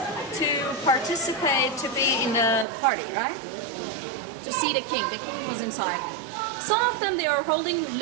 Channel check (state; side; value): drops out; left; at 2.7 s